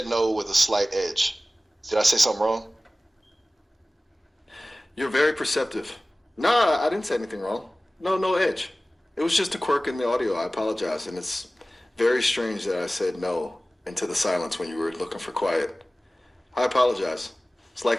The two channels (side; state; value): both; normal; correlation 0.97